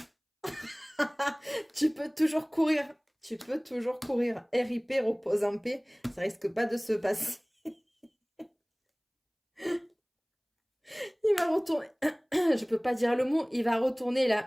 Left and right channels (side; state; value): both; identical; correlation 1.00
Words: tu peux toujours courir. Tu peux toujours courir. RIP, repose en paix. Ça risque pas de se passer. Il va retourner. Je peux pas dire le mot. Il va retourner